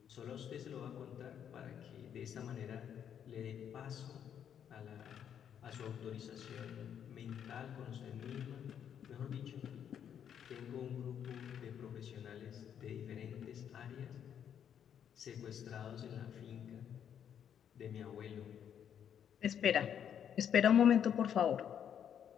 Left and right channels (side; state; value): right; quieter; 8.8 dB